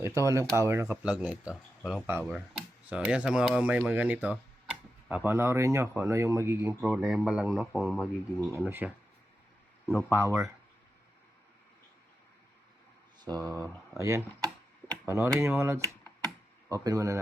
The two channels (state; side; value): normal; both; correlation 0.89